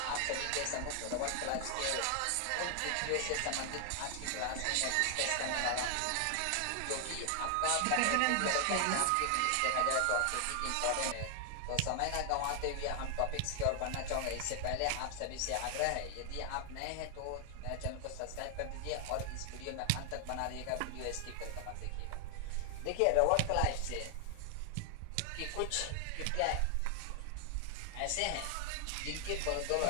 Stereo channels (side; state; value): both; different; correlation 0.00